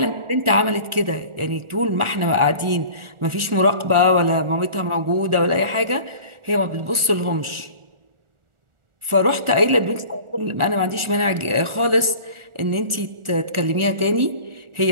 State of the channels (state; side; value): late; left; 1.4 ms